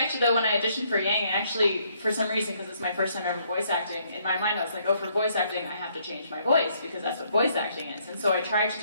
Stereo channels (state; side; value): inverted; both; correlation -0.69